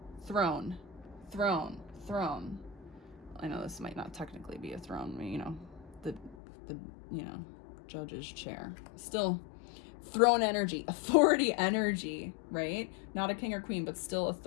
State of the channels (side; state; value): right; drops out; at 6.4 s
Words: throne, throne, throne. I know this might not technically be a throne, the judge's chair. Still throne energy, authority energy, right? Not a king or queen, but still